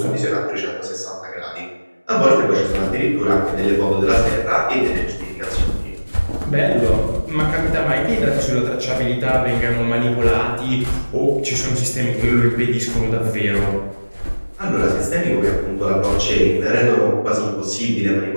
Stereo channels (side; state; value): both; inverted; correlation -1.00